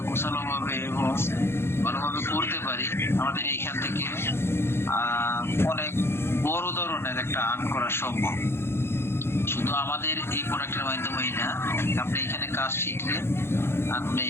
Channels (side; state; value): right; late; 0.12 ms